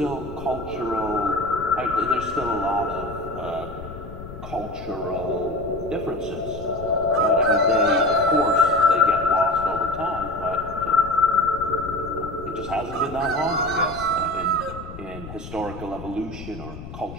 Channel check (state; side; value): noise; left; rumble, 12 dB below the sound